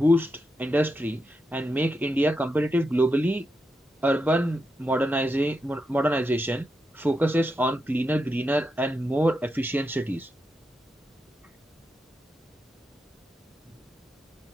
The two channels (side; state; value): both; normal; correlation 0.85